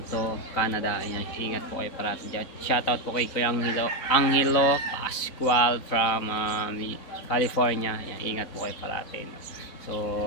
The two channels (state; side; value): late; right; 4.0 ms